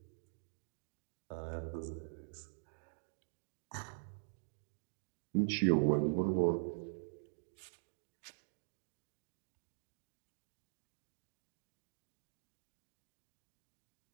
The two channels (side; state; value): left; silent; digital silence